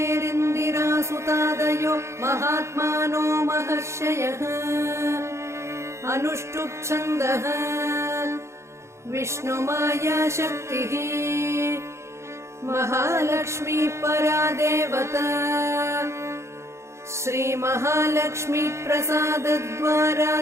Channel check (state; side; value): late; left; 0.13 ms